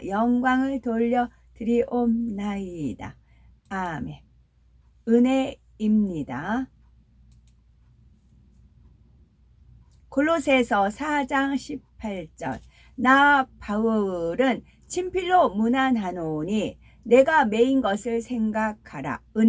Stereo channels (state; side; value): identical; both; correlation 1.00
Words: 영광을 돌려드리옵나이다. 아멘. 은혜입니다. 골로새서 4장 18절. 나 바울은 친필로 문안하노니 내가 매인 것을 생각하라.